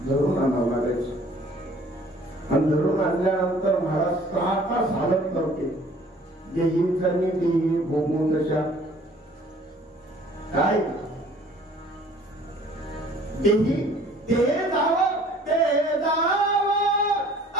धरून आणावं लागायचं. आणि धरून आणल्यानंतर महाराज 6 तास हालत नव्हते. देहीचा देही भोगून तशा काय देही ते जावं ते जावं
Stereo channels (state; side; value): normal; both; correlation 0.54